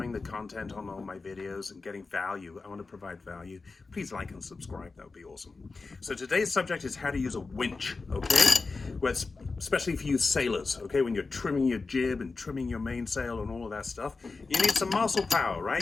the content on all my videos and getting value, I want to provide value, please like and subscribe. That would be awesome. So today's subject is how to use a winch, okay? Well, especially for you sailors, okay? When you're trimming your jib and trimming your mainsail and all of that stuff, you need some muscle power, right?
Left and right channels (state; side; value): quieter; right; 4.0 dB